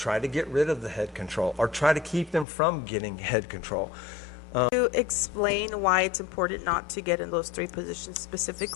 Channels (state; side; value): drops out; right; at 2.5 s